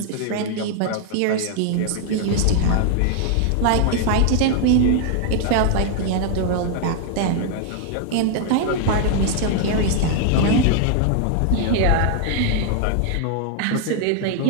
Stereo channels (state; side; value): different; both; correlation 0.00